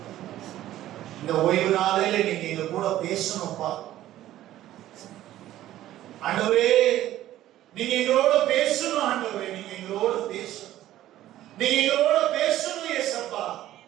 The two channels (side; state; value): left; quieter; 13.7 dB